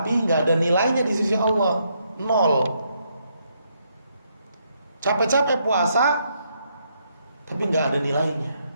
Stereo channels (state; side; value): inverted; both; correlation -0.75